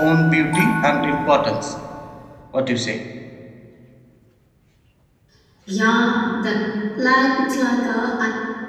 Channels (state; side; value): identical; both; correlation 1.00